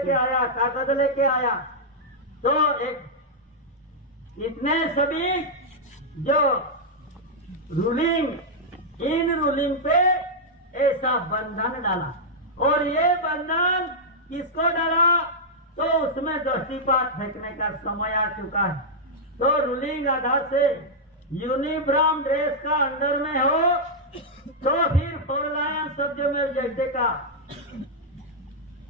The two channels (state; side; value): normal; both; correlation -0.06